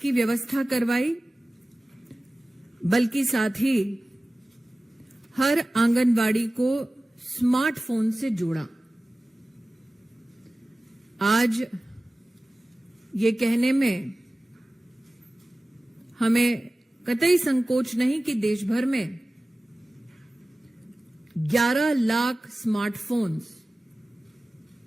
व्यवस्था करवाई, बल्कि साथ ही हर आंगनवाड़ी को स्मार्टफोन से जोड़ा। आज ये कहने में हमें कतई संकोच नहीं कि देश भर में 11 लाख स्मार्टफोन्स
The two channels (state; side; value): normal; both; correlation 0.97